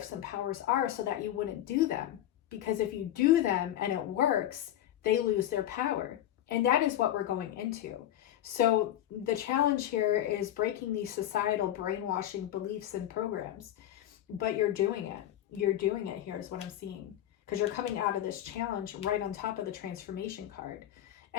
and powers are, so that you wouldn't do them. Because if you do them and it works, they lose their power. And that is what we're going into. So the challenge here is breaking these societal brainwashing beliefs and programs. But you're doing it. You're doing it here is what I'm seeing. Because you're coming out of this challenge right on top of the transformation card.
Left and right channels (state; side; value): quieter; right; 12.3 dB